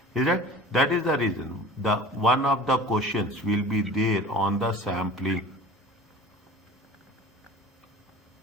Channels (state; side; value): normal; both; correlation 0.41